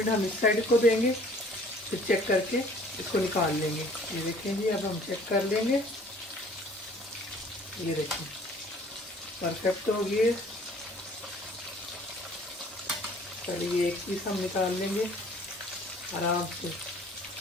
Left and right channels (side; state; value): both; normal; correlation 0.53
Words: हम इस साइड को देंगे, फिर चेक करके इसको निकाल लेंगे। ये देखें जी, अब हम चेक कर लेंगे। ये देखें, परफेक्ट हो गई। चलिए एक पीस हम निकाल लेंगे आराम से।